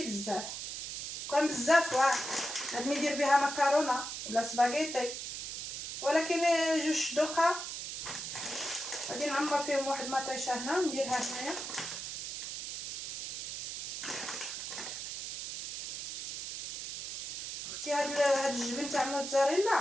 بزاف. كان بزاف واه غادي ندير بها مكرونه ولا سباغيتي، ولكن جوج دوقه غادي نعمر فيهم واحد مطيشه هنا نديرها هنايا. اختي هاد الجبن تاع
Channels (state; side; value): noise; right; hiss, 6 dB below the sound